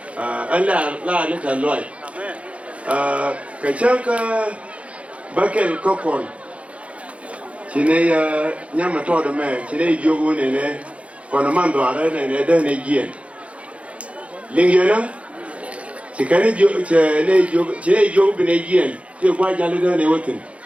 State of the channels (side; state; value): left; late; 0.063 ms